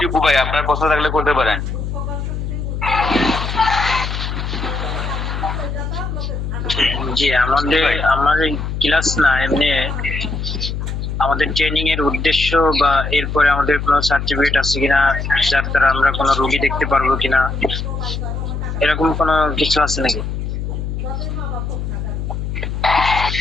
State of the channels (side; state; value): left; noise; hum, 4 dB below the sound